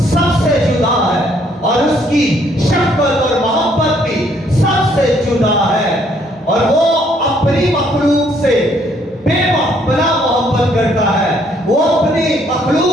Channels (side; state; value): both; normal; correlation 0.66